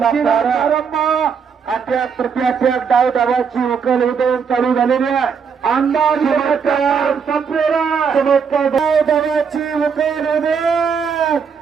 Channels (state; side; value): quieter; left; 6.4 dB